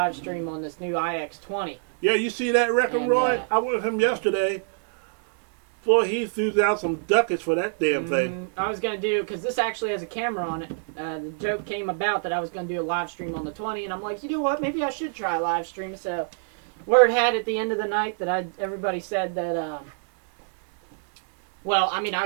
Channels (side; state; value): left; silent; digital silence